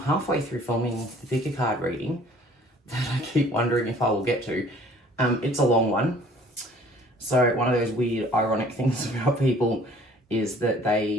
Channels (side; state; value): both; normal; correlation 0.54